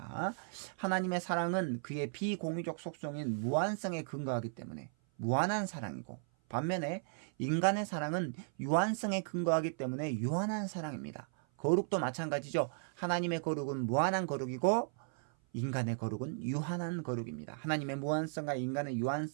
하나님의 사랑은 그의 비공유적 속성인 무한성에 근거하기 때문에 무한한 사랑이고, 반면에 인간의 사랑은 유한성에 근거하기 때문에 유한한 사랑입니다. 거룩도 마찬가지죠. 하나님의 거룩은 무한한 거룩이고 인간의 거룩은 유한한 거룩입니다. 하나님의 무한성과 인간의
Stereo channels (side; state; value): left; silent; 54 dB below the other